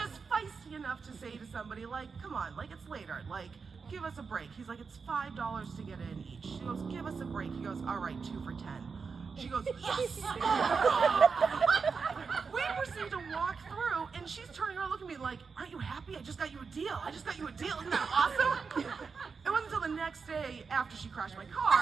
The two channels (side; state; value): left; quieter; 5.2 dB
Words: feisty enough to say to somebody, like, come on, like, it's later, like, give us a break. He's like, it's $5 to get in each. She goes, give us a break. He goes, all right, 2 for $10. She goes, yes! We proceed to walk through, and she's turning around looking at me like, aren't you happy? I just got you a deal. I just got you a deal. Isn't that awesome? It wasn't until the next day, after she crashed my